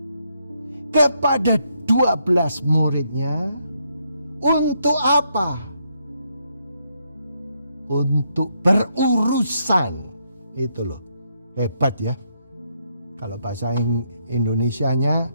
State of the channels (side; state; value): both; inverted; correlation -0.76